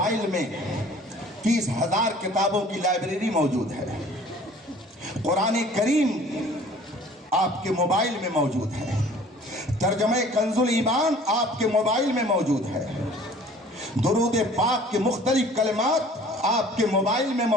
میں 30,000 کتابوں کی لائبریری موجود ہے. قرآن کریم آپ کے موبائل میں موجود ہے. ترجمہ کنز الایمان آپ کے موبائل میں موجود ہے. درود پاک کے مختلف کلمات آپ کے موبائل میں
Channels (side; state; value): both; normal; correlation 0.50